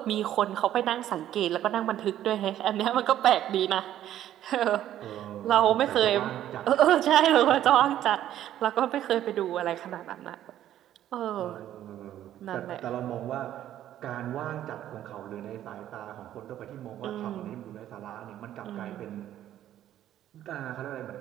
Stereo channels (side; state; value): left; quieter; 12.0 dB